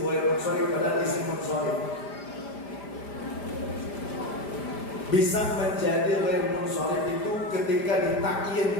munsharif, padahal isim munsharif. Bisa menjadi ghair munsharif itu ketika ditakyin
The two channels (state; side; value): late; right; 5.0 ms